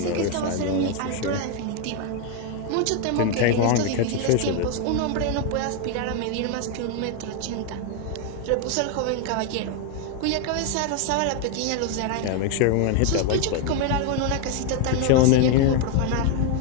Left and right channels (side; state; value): both; different; correlation 0.01